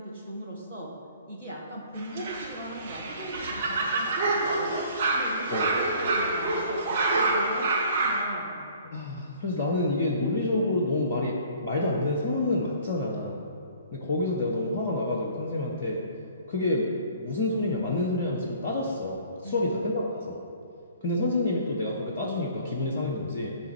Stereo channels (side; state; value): both; inverted; correlation -0.53